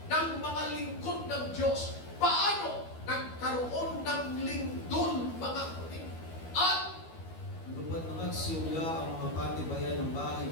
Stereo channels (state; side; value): late; right; 12 ms